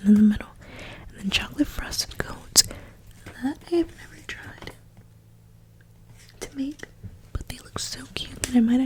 in the middle. And then chocolate frosted cones. That I have never tried to make, but they look so cute that I might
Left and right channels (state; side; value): identical; both; correlation 1.00